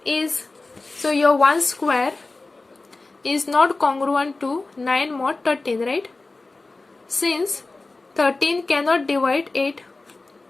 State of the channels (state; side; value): quieter; right; 3.4 dB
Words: is, so your 1 square is not congruent to 9 mod 13, right? Since 13 cannot divide 8.